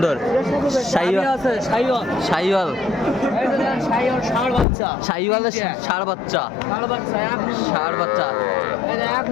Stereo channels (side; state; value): right; drops out; at 4.7 s